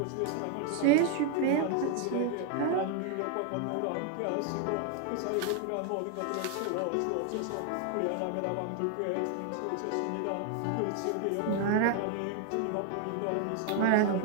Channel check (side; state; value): both; different; correlation 0.00